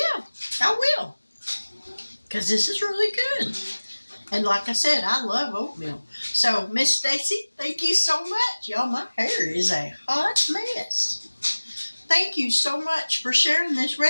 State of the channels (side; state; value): both; inverted; correlation -1.00